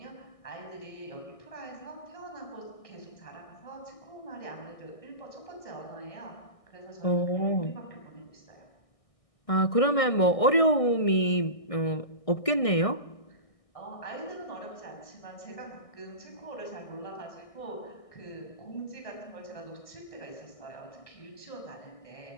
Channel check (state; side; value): late; right; 1.6 ms